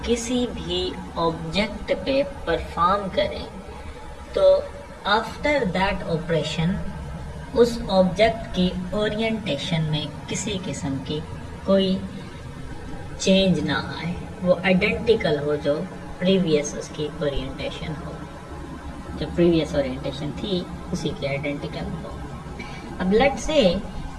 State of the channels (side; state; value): both; identical; correlation 1.00